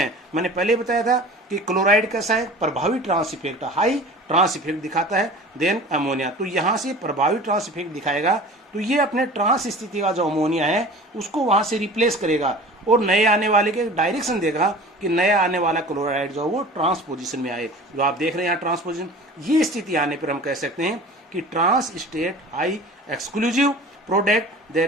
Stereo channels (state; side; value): normal; both; correlation 0.40